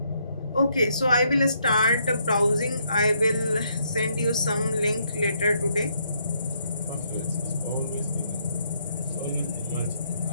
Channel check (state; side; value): inverted; both; correlation -0.73